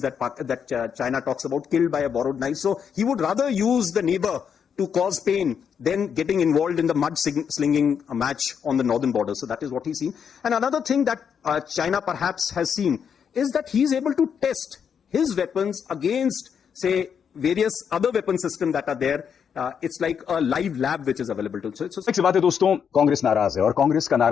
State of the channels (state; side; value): quieter; right; 7.4 dB